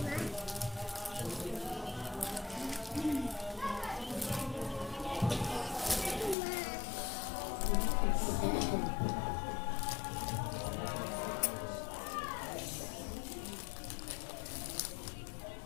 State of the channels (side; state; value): right; drops out; at 6.4 s